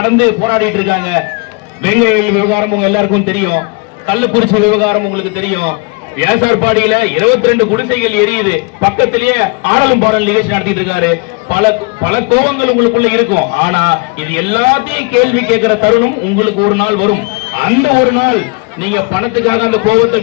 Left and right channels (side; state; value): right; quieter; 29.2 dB